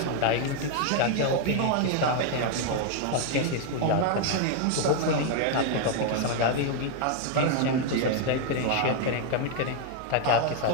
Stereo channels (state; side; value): different; both; correlation 0.00